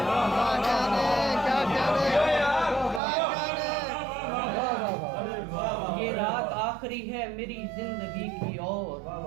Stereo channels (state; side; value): drops out; left; at 3.0 s